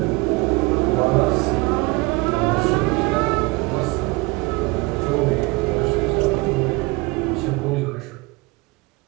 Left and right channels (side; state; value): left; quieter; 24.8 dB